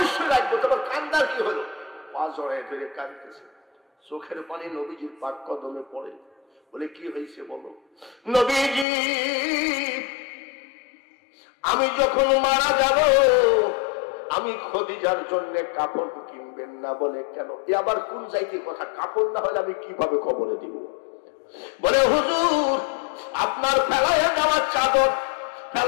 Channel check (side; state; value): right; drops out; at 8.8 s